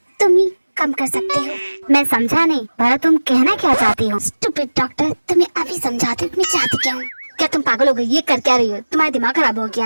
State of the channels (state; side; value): inverted; both; correlation -1.00